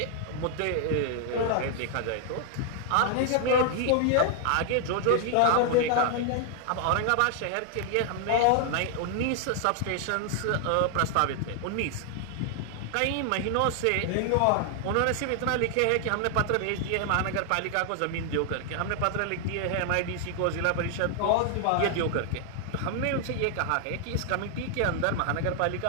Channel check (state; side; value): different; both; correlation 0.00